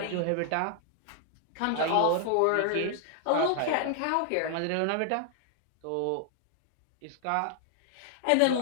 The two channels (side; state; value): both; different; correlation 0.00